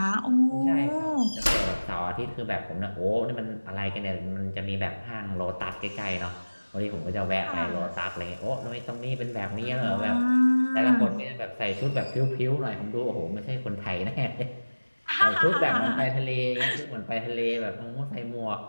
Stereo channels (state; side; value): inverted; both; correlation -1.00